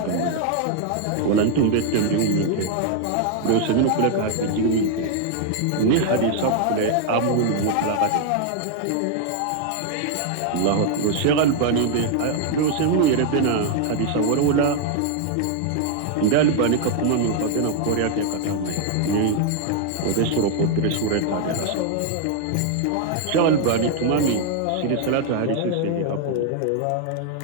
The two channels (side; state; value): both; different; correlation 0.00